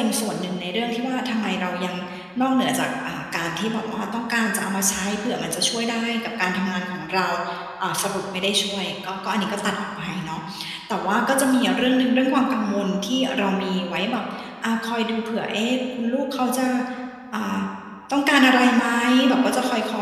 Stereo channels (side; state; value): both; identical; correlation 1.00